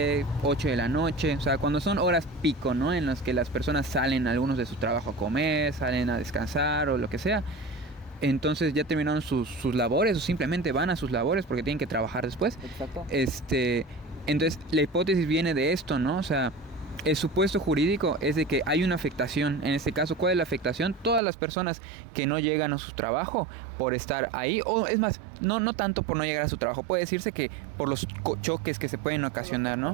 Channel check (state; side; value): drops out; left; at 21.2 s